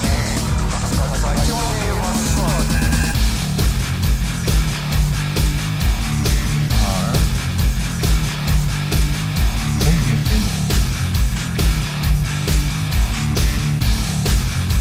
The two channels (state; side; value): identical; both; correlation 1.00